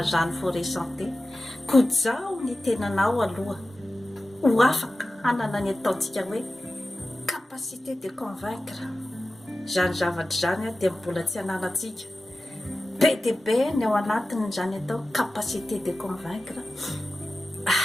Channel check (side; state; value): both; normal; correlation 0.95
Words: zany forêt santé kojaho ny tenanao aloha ho afaka hanana ny ataontsika hoe capacité de convaincre zany zavatra zany dia mbola tsy hananantsika be dia be ny ao anatiny zany atao capacité de convaincre